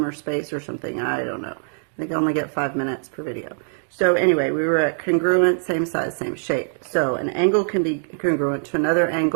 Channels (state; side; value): silent; left; digital silence